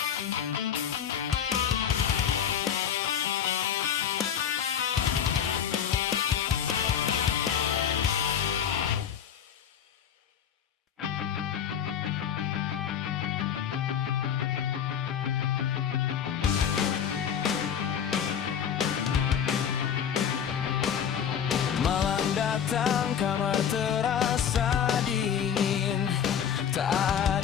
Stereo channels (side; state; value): right; quieter; 8.4 dB